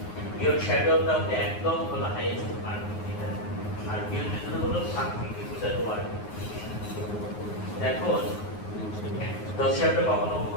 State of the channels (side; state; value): right; late; 9.6 ms